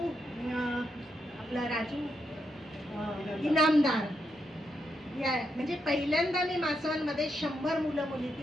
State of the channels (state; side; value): normal; both; correlation 0.82